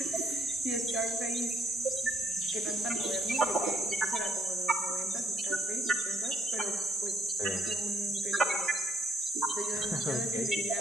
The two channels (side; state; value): both; normal; correlation 0.70